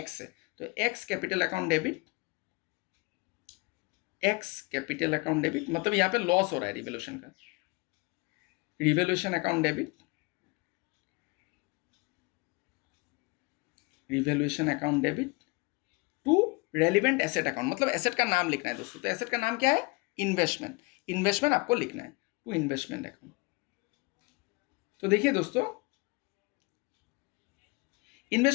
है, तो X capital account debit, X capital account debit, मतलब यहाँ पे लॉस हो रहा है रिवोल्यूशन का, revaluation account debit, revolution account debit to relevant asset account, मतलब एसेट का नाम लिखना है दोस्तों। तो एसेट का नाम क्या है, इन्वेस्टमेंट, इन्वेस्टमेंट आपको लिखना है, टू इन्वेस्टमेंट अकाउंट। तो देखिए दोस्तों,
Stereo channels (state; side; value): quieter; right; 27.5 dB